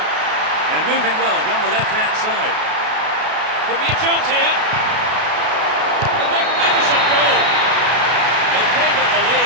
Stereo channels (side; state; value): left; late; 33 ms